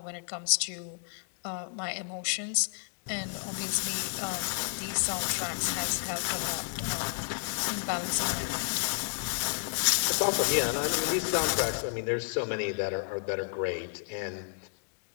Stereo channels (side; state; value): right; silent; 57 dB below the other